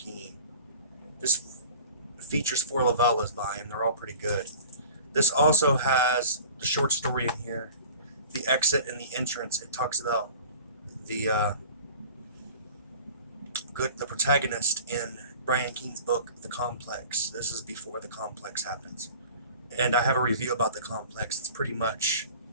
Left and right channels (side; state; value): both; inverted; correlation -0.43